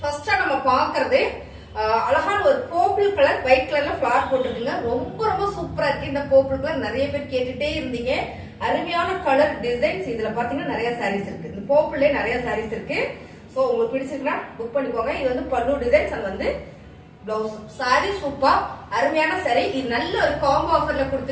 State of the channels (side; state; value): both; identical; correlation 1.00